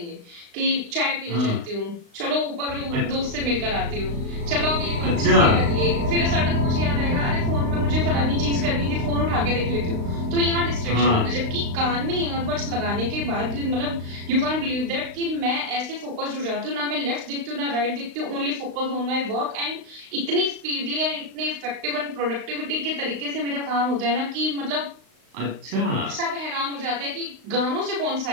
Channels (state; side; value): late; left; 35 ms